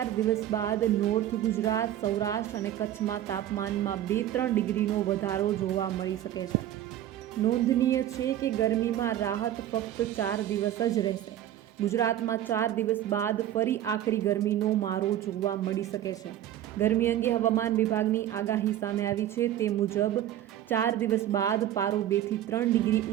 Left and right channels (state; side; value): quieter; left; 12.0 dB